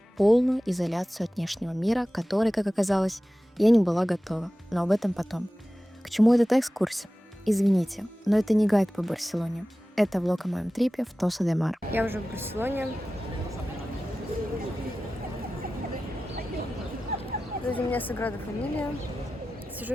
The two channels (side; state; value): both; normal; correlation 0.95